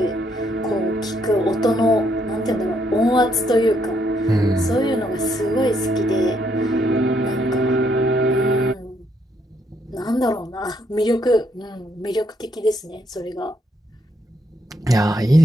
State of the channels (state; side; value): normal; both; correlation 0.73